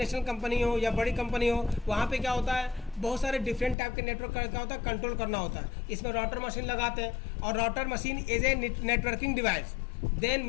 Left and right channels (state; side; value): drops out; right; at 3.8 s